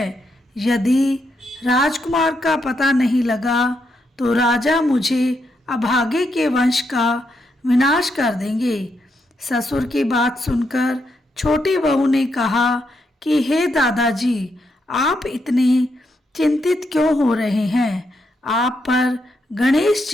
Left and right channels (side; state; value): both; normal; correlation 0.80